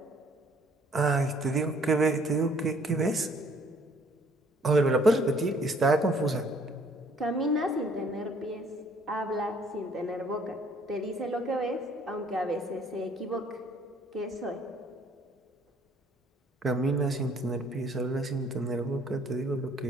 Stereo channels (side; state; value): both; normal; correlation 0.61